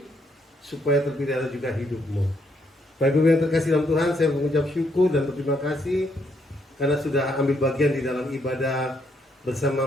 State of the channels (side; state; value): both; normal; correlation 0.73